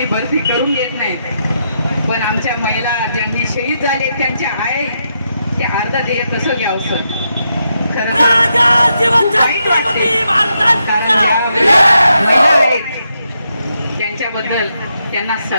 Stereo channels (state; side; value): inverted; both; correlation -0.82